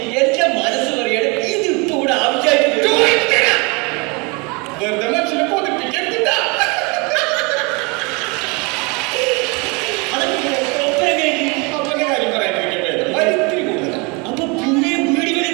എന്റെ മനസ്സ് പറയാണ് ഇത് ഇപ്പൊ ഇവിടെ ആവശ്യമായിട്ട് വെറുതെ മനുഷ്യനെ കൊതിപ്പിക്കരുതില്ല. അപ്പന്റെ കാര്യം പറയാണ്ടിരിക്കട്ടെ വലിത്തിരി കൂടുതലാണ്. അപ്പൊ പുതിയ വീടുകളിൽ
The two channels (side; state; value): left; quieter; 29.3 dB